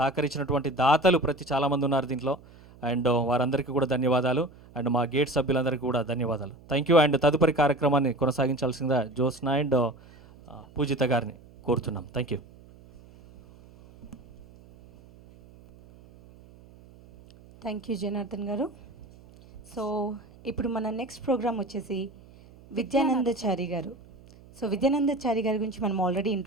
దాతలు చాలామంది ఉన్నారు దీంట్లో. అండ్ వారందరికీ కూడా ధన్యవాదాలు. అండ్ మా గేట్ సభ్యులందరికీ కూడా ధన్యవాదాలు. Thank you. అండ్ తదుపరి కార్యక్రమాన్ని కొనసాగించాల్సిందిగా జ్యోత్స్న అండ్ పూజిత గారిని కోరుతున్నాం. Thank you. Thank you Janardhan గారు. సో ఇప్పుడు మన నెక్స్ట్ ప్రోగ్రామ్ వచ్చేసి విద్యానందచారి గారు. సో విద్యానందచారి గారి గురించి మనం ఆల్రెడీ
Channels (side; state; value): right; noise; hum, 23 dB below the sound